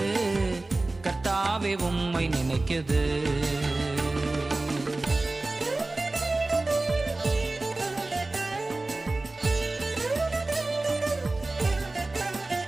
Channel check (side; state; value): left; quieter; 3.1 dB